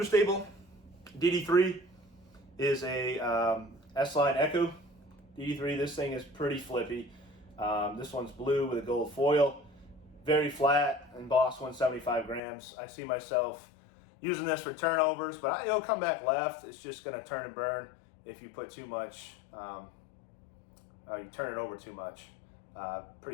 DD3 is a S-Line Echo DD3. This thing is pretty flippy. This one's blue with a gold foil. Very flat, embossed 175 grams. I see myself using this for turnovers, but it'll come back left. It's just going to turn and burn if you put too much, you turn it over too much.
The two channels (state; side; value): drops out; right; at 12.4 s